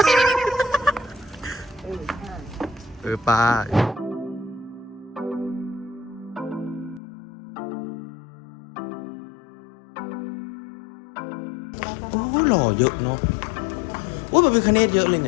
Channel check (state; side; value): drops out; right; at 7.0 s